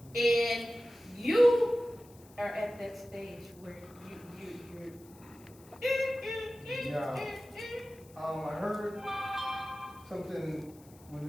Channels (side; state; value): left; noise; hiss, 25 dB below the sound